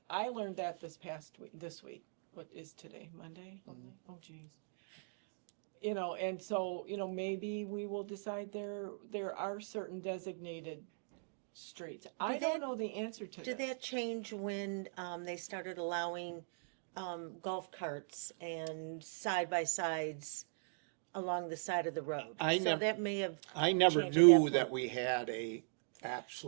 learned that this week. What is today? Monday? Oh geez. You know, and so, you know, maybe we will decide there are certain designated streets. I Did don't that- know the answer to Did this. that change when, they started allowing, golf carts and side-by-sides along the side of the road? I So nev- that may have, I never Change at knew that that point. we had a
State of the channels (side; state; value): left; silent; digital silence